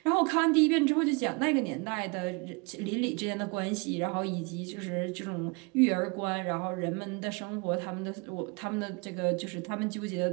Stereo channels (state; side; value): quieter; left; 30.1 dB